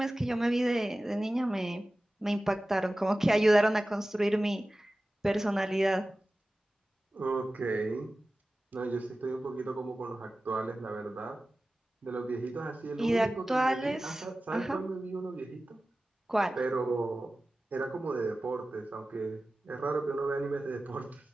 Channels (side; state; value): both; normal; correlation 0.96